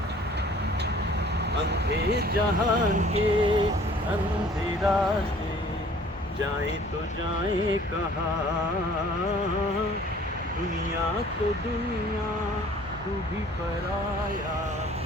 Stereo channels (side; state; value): both; normal; correlation 0.53